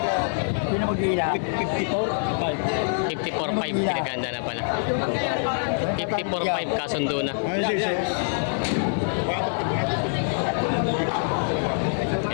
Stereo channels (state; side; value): silent; right; 58 dB below the other